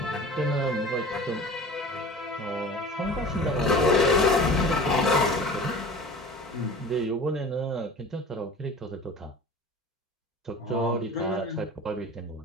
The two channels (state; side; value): normal; both; correlation 0.40